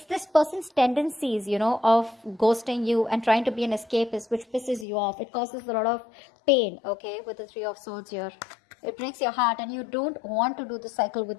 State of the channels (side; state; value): right; drops out; at 4.9 s